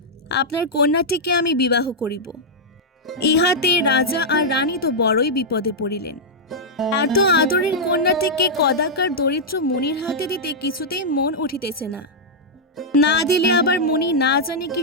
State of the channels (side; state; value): both; normal; correlation -0.07